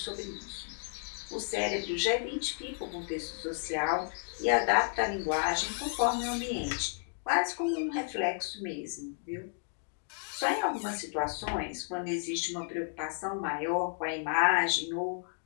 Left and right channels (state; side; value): silent; right; 56 dB below the other